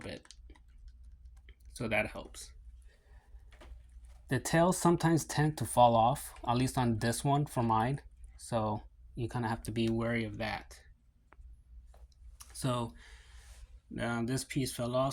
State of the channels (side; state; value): both; identical; correlation 1.00